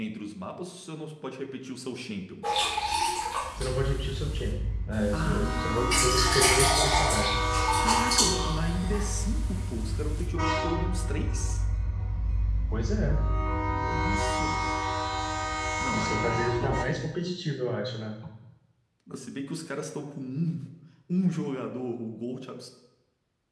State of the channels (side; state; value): both; identical; correlation 1.00